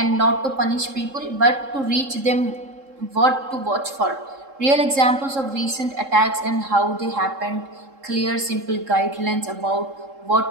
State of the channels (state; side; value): late; left; 3.7 ms